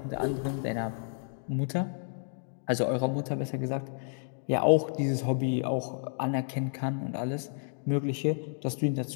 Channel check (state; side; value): silent; right; digital silence